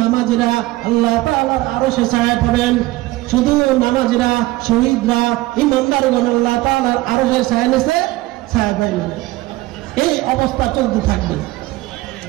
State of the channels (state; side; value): quieter; left; 18.7 dB